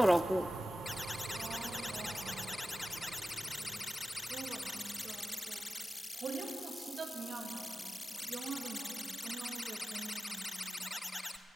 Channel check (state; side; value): normal; both; correlation 0.95